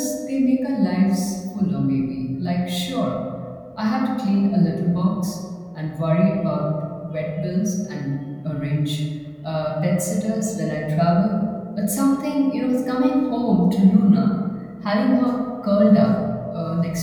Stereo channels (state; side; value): identical; both; correlation 1.00